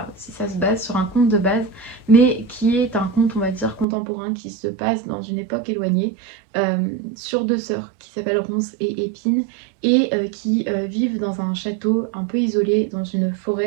si ça se base sur un conte de base, mais qui est un conte on va dire contemporain qui se passe dans une époque éloignée sur deux sœurs qui s'appellent Ronces et Épines et qui vivent dans un château un peu isolé dans une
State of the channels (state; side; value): drops out; left; at 3.9 s